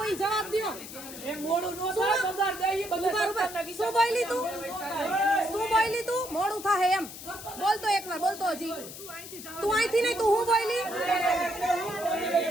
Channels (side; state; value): left; noise; hiss, 12 dB below the sound